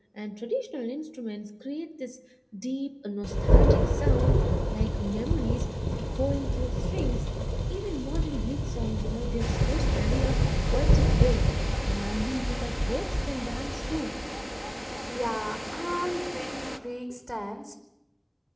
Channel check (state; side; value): identical; both; correlation 1.00